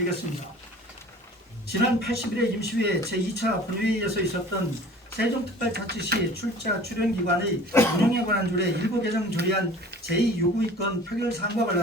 지난 80일의 임시회 제2차 본회의에서 있었던 세종특별자치시 출자 출연기관의 운영에 관한 조례 일부 개정 조례안 제2요구의건 표결 사항과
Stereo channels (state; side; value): normal; both; correlation 0.44